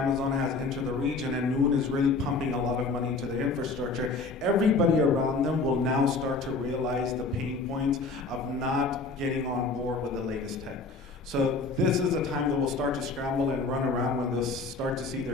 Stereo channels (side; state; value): right; quieter; 3.8 dB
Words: has entered the region and Noon is really pumping a lot of money into the infrastructure, everybody around them will now start to realize the pain points of not getting on board with the latest tech. So this is a time that we'll start to scramble and run around when they'll start to see